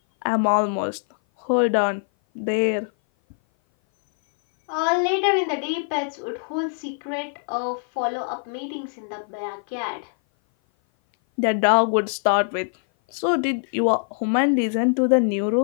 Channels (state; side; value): silent; right; 57 dB below the other